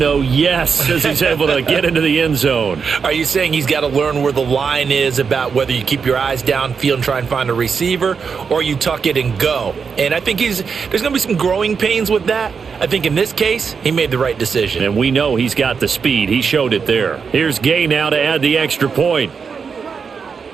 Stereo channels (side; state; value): left; quieter; 5.8 dB